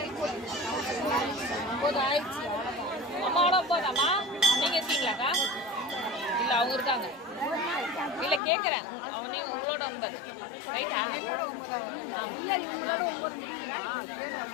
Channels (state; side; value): drops out; right; at 8.4 s